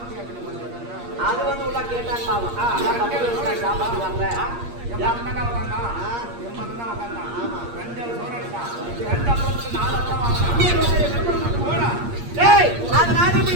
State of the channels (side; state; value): left; late; 8.5 ms